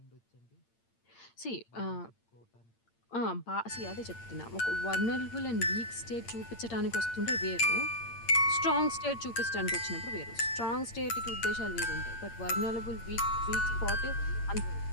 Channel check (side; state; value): right; late; 8.8 ms